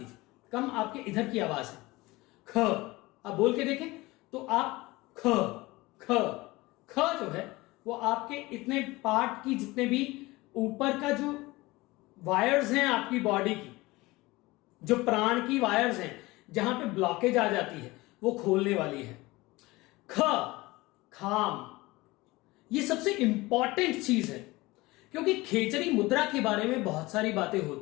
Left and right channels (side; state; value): right; quieter; 21.0 dB